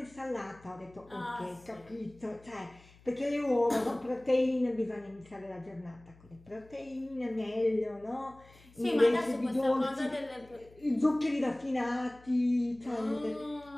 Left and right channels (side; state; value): left; noise; hum, 25 dB below the sound